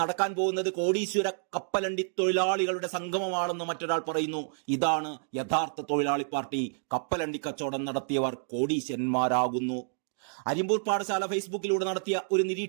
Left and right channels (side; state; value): left; silent; digital silence